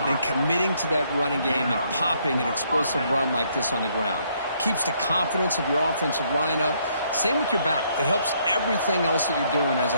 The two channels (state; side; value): inverted; both; correlation -0.70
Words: than committing to that running game and popping an explosive run like this on the ground. Keeps the confidence of your offensive lineup. Same with your back. It helps everything else that you're doing as